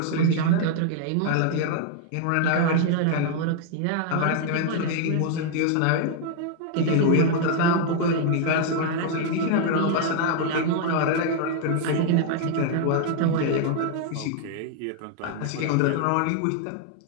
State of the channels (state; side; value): different; both; correlation 0.00